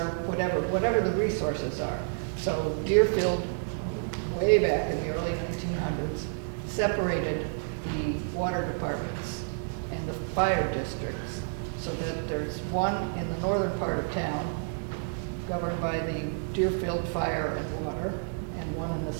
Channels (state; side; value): silent; left; digital silence